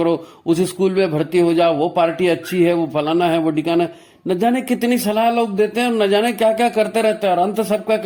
उस स्कूल में भर्ती हो जाओ, वो पार्टी अच्छी है, वो फलाना है, वो ठिकाना है। न जाने कितनी सलाह लोग देते हैं और न जाने क्या क्या करते रहते हैं। और अंत सबका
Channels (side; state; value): both; identical; correlation 1.00